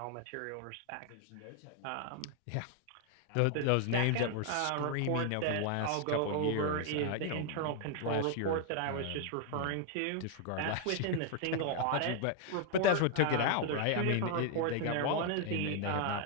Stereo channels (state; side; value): different; both; correlation 0.00